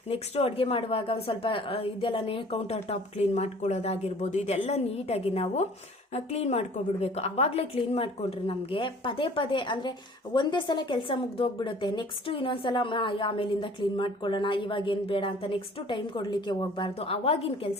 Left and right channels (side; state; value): both; normal; correlation 0.50